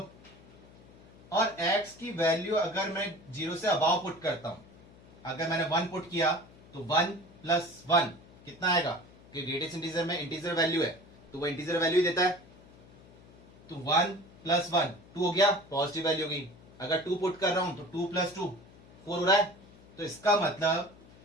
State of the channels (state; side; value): noise; left; hum, 23 dB below the sound